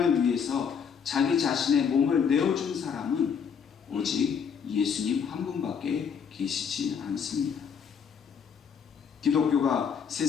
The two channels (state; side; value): quieter; right; 6.8 dB